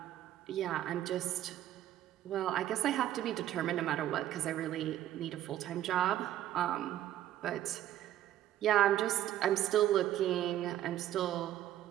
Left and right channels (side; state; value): left; quieter; 12.6 dB